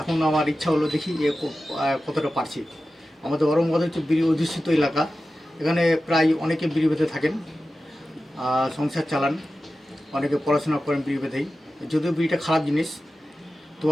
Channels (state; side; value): normal; both; correlation 0.94